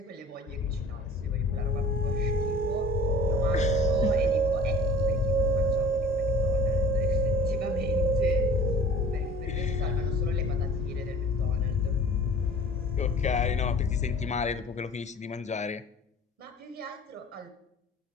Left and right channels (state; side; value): normal; both; correlation 0.43